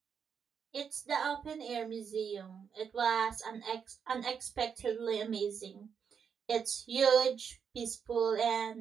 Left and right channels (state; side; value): quieter; left; 6.9 dB